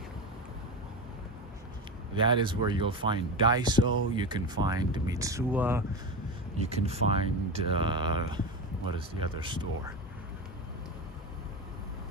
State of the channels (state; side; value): normal; both; correlation 0.20